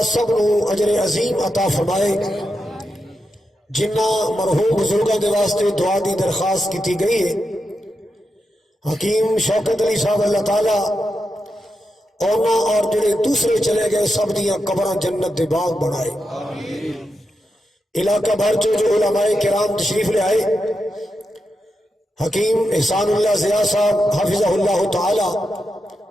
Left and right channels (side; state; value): both; normal; correlation 0.87